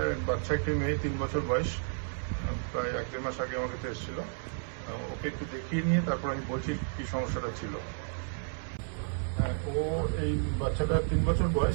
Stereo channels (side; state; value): left; silent; 56 dB below the other